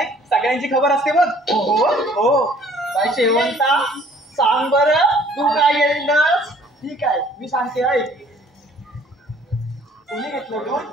सगळ्यांची खबर असते बघ. हो हो, बाई शेवंता सांग बरं, तू काय घेतलंस? ठीक आहे, मी सांगते ऐक. कुणी घेतलं दूध?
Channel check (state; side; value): normal; both; correlation 0.56